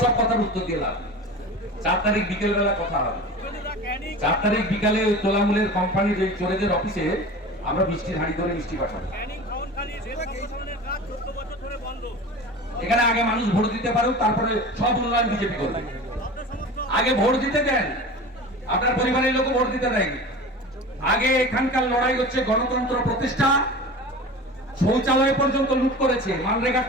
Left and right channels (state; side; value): normal; both; correlation 0.34